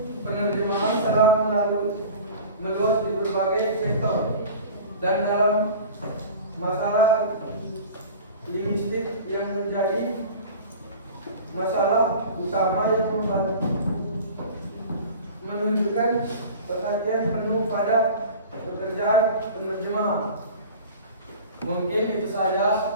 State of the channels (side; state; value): both; inverted; correlation -0.38